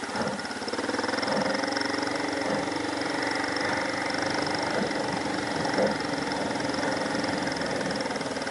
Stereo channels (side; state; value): both; identical; correlation 1.00